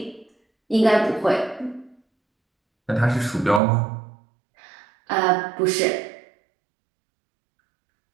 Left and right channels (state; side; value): drops out; left; at 3.6 s